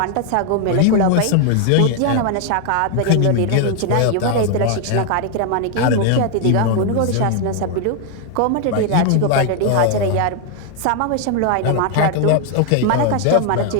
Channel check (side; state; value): both; different; correlation 0.00